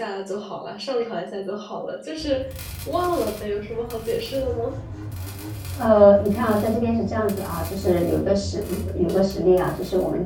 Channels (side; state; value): both; identical; correlation 1.00